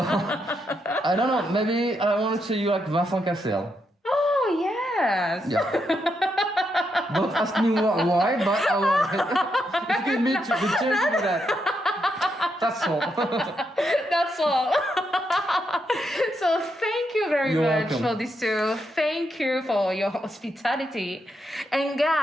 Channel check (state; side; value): normal; both; correlation 0.81